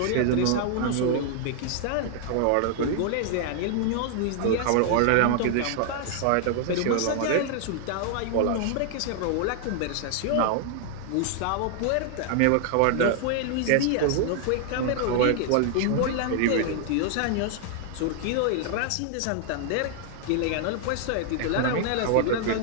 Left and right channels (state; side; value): different; both; correlation 0.00